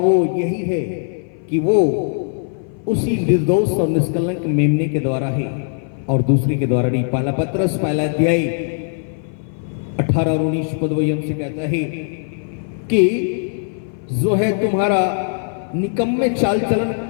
यही है कि वो उसी निर्दोष और निष्कलंक मेमने के द्वारा है और दूसरे के द्वारा नहीं। पहला पत्रस पहला अध्याय 18 और 19 पद वही हमसे कहता है कि जो है तुम्हारा निकम्मे चाल चलन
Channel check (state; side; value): silent; right; 58 dB below the other